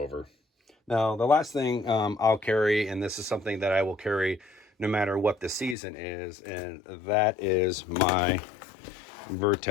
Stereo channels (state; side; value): drops out; right; at 5.8 s